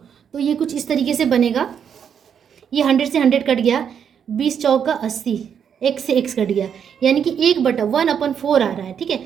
तो ये कुछ इस तरीके से बनेगा। ये 100 से 100 कट गया, 20 चौका 80, x से x कट गया, यानी कि 1/1/4 आ रहा है, ठीक है।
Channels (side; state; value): left; quieter; 7.9 dB